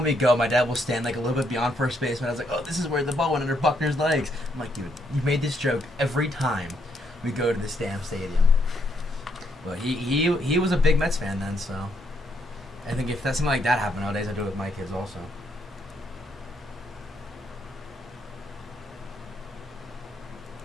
we go, my dad will stand like a little bit beyond first base, and I was like, "Oh, this is where the ball went under Buckner's legs." I'm like, "Dude, you made this joke every time we go to this damn stadium." But he was a big Mets fan then, so I think if that's something like that happened nowadays, I do it with my kids also.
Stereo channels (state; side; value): normal; both; correlation 0.74